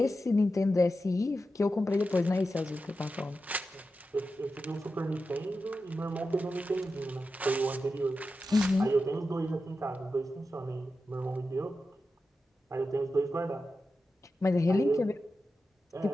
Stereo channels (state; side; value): normal; both; correlation 0.90